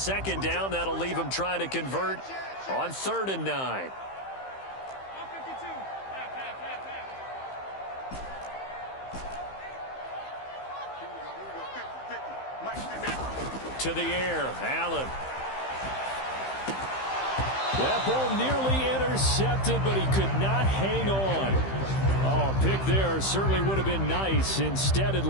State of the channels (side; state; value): right; late; 15 ms